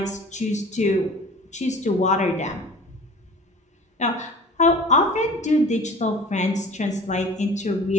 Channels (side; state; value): both; normal; correlation 0.42